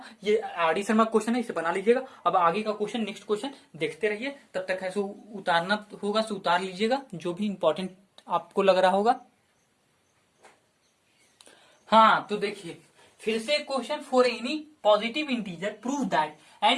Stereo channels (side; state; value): both; identical; correlation 1.00